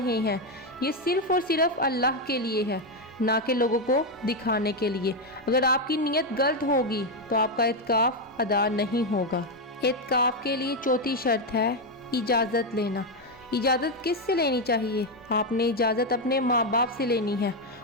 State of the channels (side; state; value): both; normal; correlation 0.05